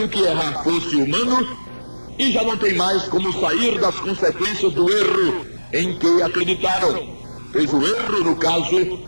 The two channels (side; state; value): both; inverted; correlation -1.00